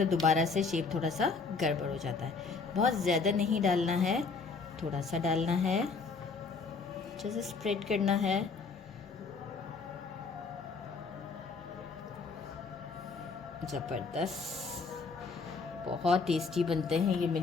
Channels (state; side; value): quieter; right; 4.6 dB